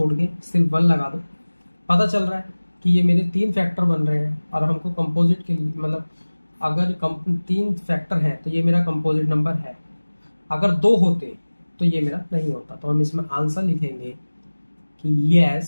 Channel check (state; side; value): inverted; both; correlation -1.00